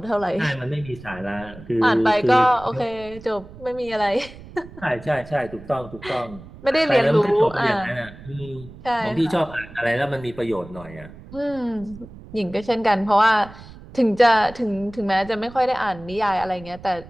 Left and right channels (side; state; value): right; noise; rumble, 18 dB below the sound